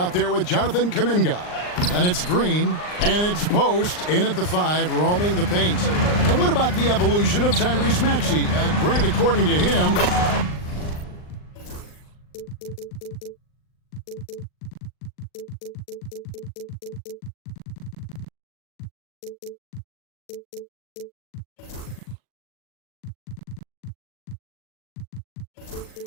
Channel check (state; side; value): late; right; 39 ms